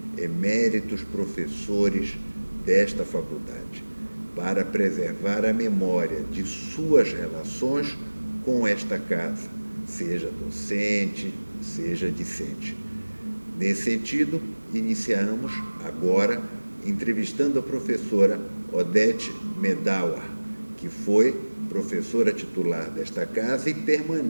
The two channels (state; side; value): inverted; both; correlation -1.00